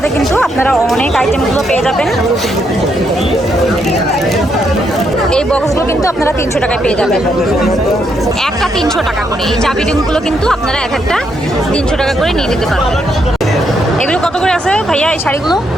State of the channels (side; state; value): both; normal; correlation 0.77